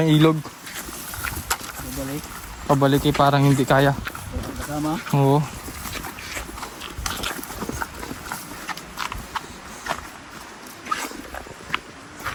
ilog. Babalik. Pabalik eh, parang hindi kaya. Kasama. Oo.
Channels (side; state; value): both; identical; correlation 1.00